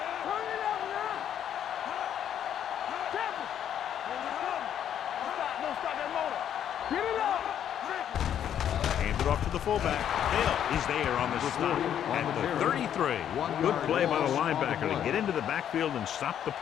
it up now. Temple. Don't stop that motor. Get it up. Hand it off to the fullback. Hill is there on the stop at the 33. Good play by the linebacker to get into the backfield and stop the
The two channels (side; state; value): right; quieter; 9.7 dB